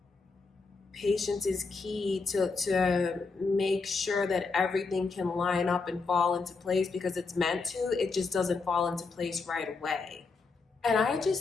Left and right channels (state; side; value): quieter; right; 4.3 dB